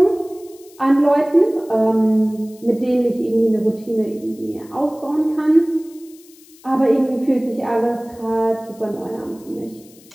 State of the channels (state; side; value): noise; left; hiss, 25 dB below the sound